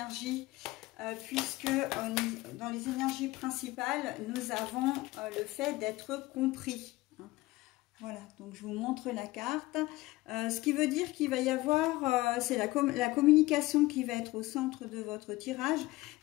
puisque dans les énergies principales, nous avons le fait d'être compris. Hein. Voilà, donc je vous montre la carte. Ce qui veut dire qu'il va y avoir, c'est la communication qui va être au centre de votre tirage,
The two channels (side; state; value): right; quieter; 19.5 dB